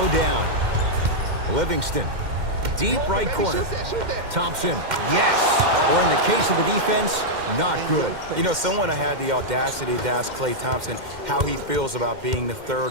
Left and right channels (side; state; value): left; late; 2.1 ms